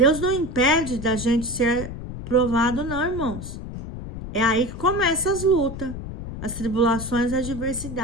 não impede da gente ser provado não, irmãos. É aí que começam as lutas, as tribulações, a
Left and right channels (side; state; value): left; noise; rumble, 9 dB below the sound